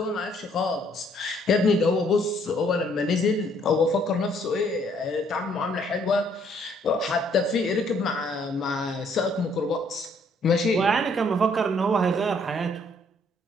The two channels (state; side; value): normal; both; correlation 0.65